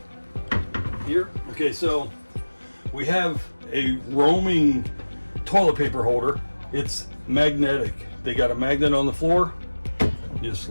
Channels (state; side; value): inverted; both; correlation -1.00